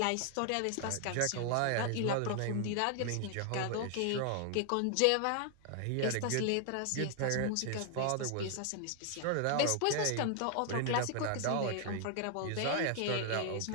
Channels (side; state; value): both; different; correlation 0.00